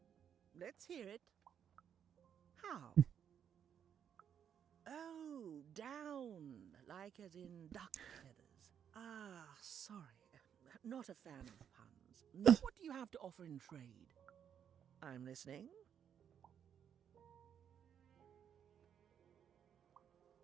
Let's hear it. How? Oh, down. Like as in duck feathers. Ah, sorry. Not a fan of puns. No, what do you have to offer in trade? I'm listening.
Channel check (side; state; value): left; quieter; 8.5 dB